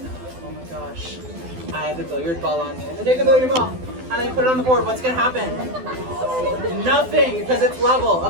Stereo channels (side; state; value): left; late; 12 ms